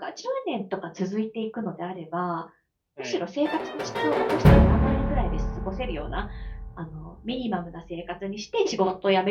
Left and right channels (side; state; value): both; identical; correlation 1.00